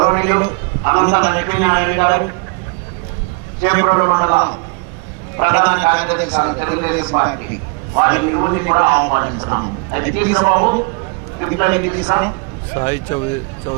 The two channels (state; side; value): quieter; left; 33.4 dB